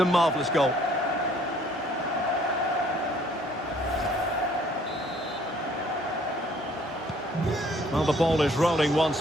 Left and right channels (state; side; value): normal; both; correlation 0.60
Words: marvellous goal. Well, the ball is rolling once